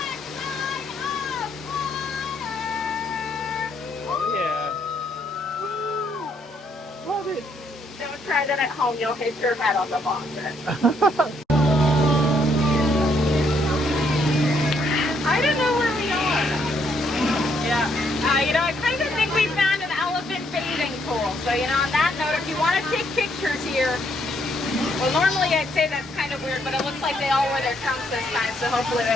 of Water! Yeah. Love it. Don't try that at home, you'll hit your head on the faucet. I don't know where we are. Yeah. You know, I kind of think we found an elephant bathing pool. So, you know, on that note, if you want to take pictures here, well, normally I'd say that's kind of weird, but it looks like they all wear their trunks this time, so hopefully they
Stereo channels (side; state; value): both; normal; correlation 0.72